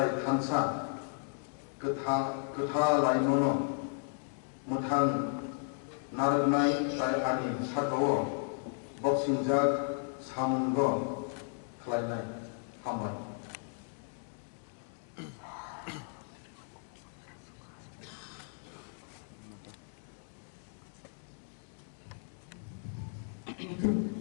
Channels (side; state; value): right; silent; 55 dB below the other